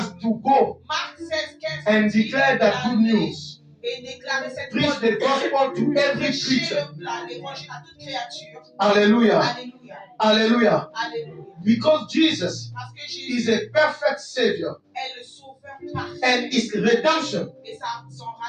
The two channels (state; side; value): identical; both; correlation 1.00